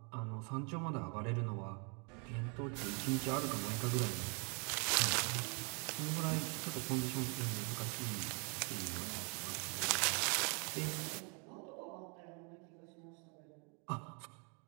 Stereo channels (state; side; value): quieter; left; 35.5 dB